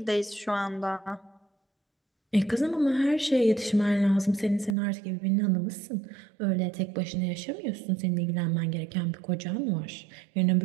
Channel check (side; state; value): left; drops out; at 4.8 s